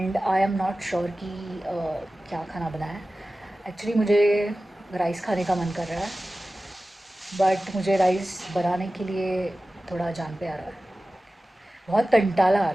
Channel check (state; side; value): normal; both; correlation 0.96